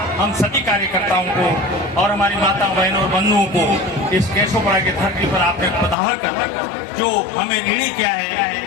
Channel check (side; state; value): right; drops out; at 6.0 s